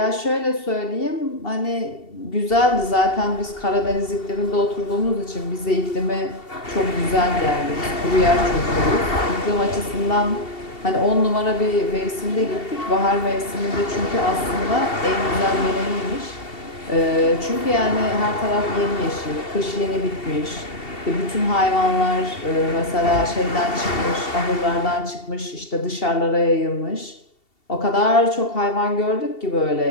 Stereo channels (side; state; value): right; late; 2.7 ms